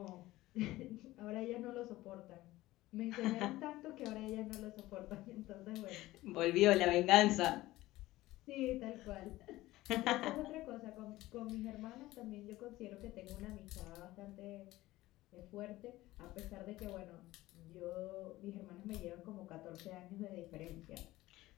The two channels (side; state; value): right; quieter; 17.3 dB